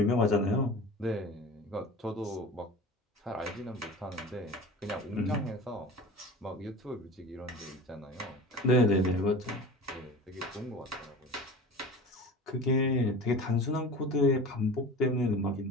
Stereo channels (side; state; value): both; normal; correlation 0.36